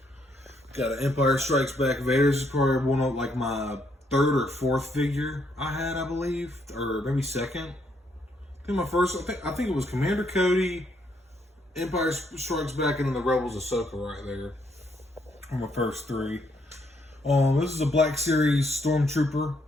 Got an Empire Strikes Back Vader. This is probably one of like my 3rd or 4th figure I had, I believe. Or maybe 2nd. I think my first, I think it was Commander Cody, Empire Strikes Back, and then the Rebels Ahsoka right there. On my first 3. This is a Black Series Stormtrooper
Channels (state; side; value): normal; both; correlation 0.73